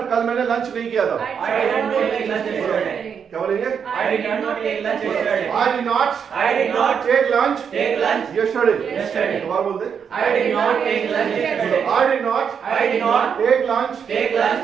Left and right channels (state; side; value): quieter; left; 7.1 dB